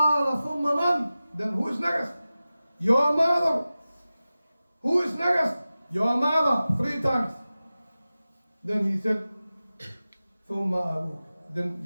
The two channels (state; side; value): inverted; both; correlation -0.96